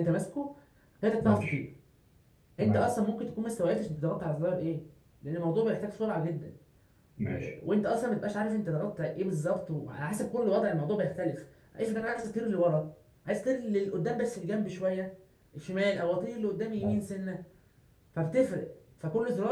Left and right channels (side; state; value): both; identical; correlation 1.00